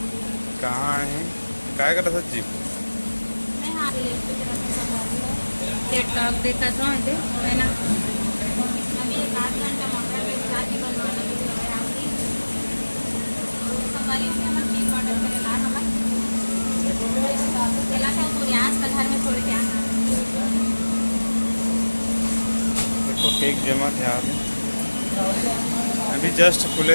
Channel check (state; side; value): inverted; both; correlation -1.00